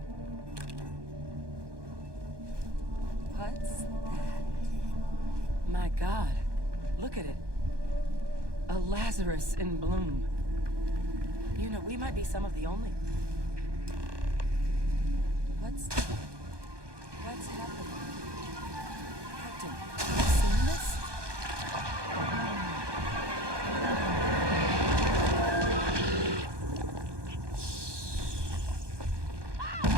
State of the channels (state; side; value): late; left; 1.2 ms